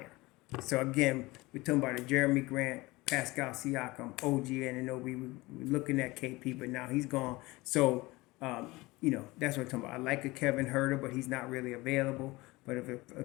So again, we're talking about a Jeremy Grant, Pascal Siakam, OG Anunoby. We're looking at KP, but now he's gone. So that's what I'm talking about. I like a Kevin Herter, but he's not really available. But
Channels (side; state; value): right; quieter; 21.5 dB